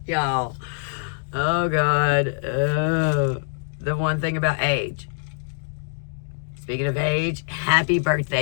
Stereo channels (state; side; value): silent; right; digital silence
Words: Y'all. Oh, God. The one thing about age. Speaking of age, happy